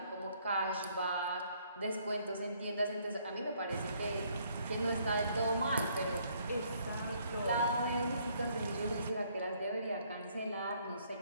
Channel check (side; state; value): both; inverted; correlation -0.66